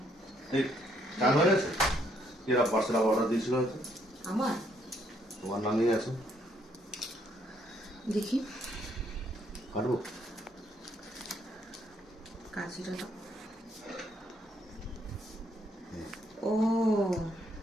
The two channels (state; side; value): normal; both; correlation 0.70